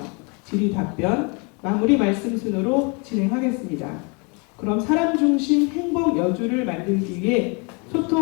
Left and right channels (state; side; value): quieter; right; 32.9 dB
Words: 질의 답변, 마무리 말씀 순으로 진행하겠습니다. 그럼 사람 중심 행복 여주를 만들기 위해